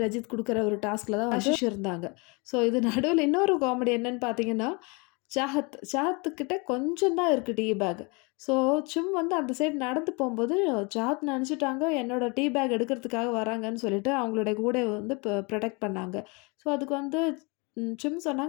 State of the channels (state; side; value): quieter; right; 29.8 dB